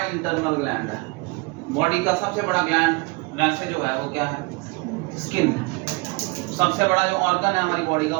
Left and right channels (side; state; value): left; quieter; 26.9 dB